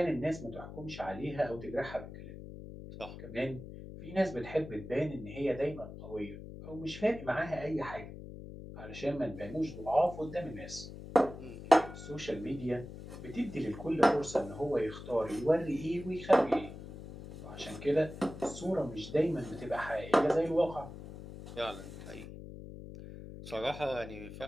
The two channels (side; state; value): left; noise; hum, 12 dB below the sound